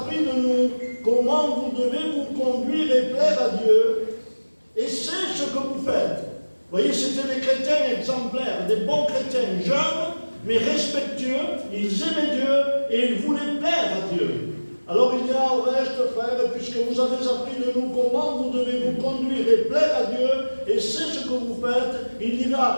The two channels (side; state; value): both; inverted; correlation -1.00